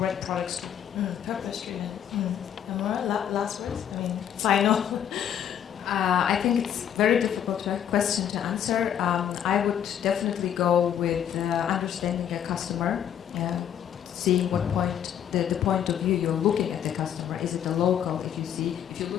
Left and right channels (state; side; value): quieter; right; 9.6 dB